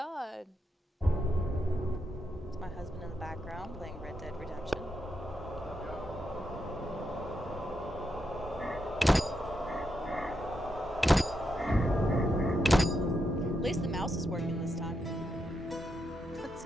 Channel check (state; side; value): normal; both; correlation 0.83